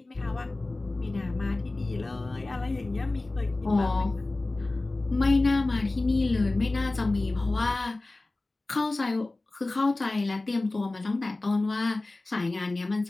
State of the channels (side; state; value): right; quieter; 3.0 dB